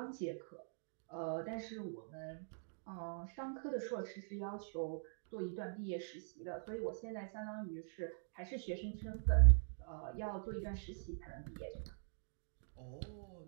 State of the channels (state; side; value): silent; left; digital silence